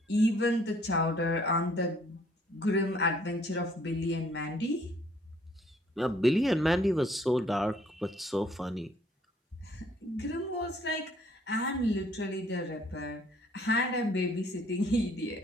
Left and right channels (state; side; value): normal; both; correlation 0.62